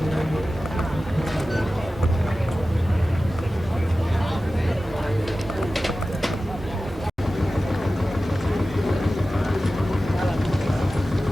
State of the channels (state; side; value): normal; both; correlation 0.95